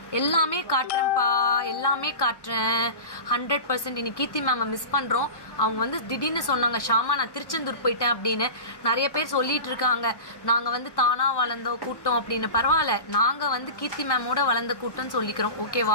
எல்லாமே காட்டுறேன்ப்பா, எல்லாமே காட்டுறேன் 100%. இன்னைக்கு கீர்த்தி மேமை மிஸ் பண்ணுறோம். அவங்க வந்து திடீர்னு சொன்னாங்க, ஷாமா நான் திருச்செந்தூர் போயிட்டேன் அப்படின்னு. நிறைய பேர் சொல்லிட்டு இருக்காங்க நாங்கள் வந்து தானாக வளர்ந்த கூட்டம் அப்படின்னு. பரவாயில்ல, நாங்கள் வந்து கீர்த்தி மேமோட வளர்ந்த கூட்டம்னு சொல்லிக்கிறோம்,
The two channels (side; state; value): right; late; 1.1 ms